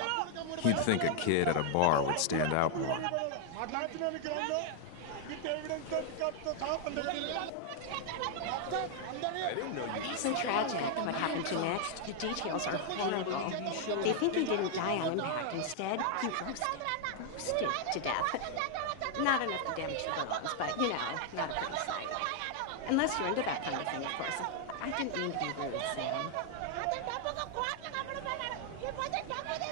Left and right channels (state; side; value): different; both; correlation 0.00